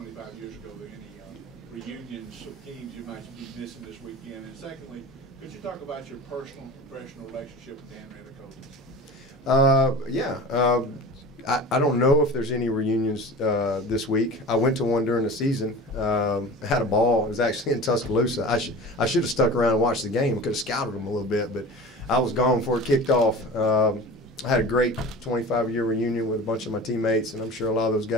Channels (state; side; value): normal; both; correlation 0.36